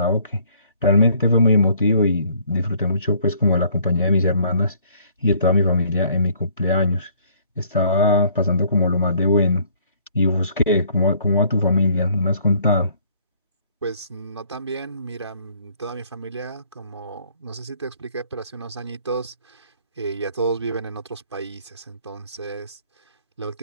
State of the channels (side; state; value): both; inverted; correlation -0.60